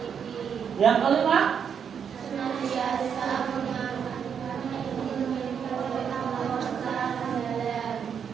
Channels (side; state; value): left; quieter; 7.4 dB